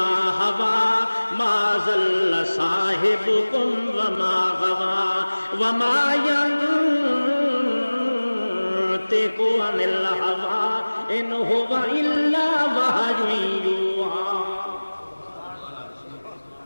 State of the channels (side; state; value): both; inverted; correlation -1.00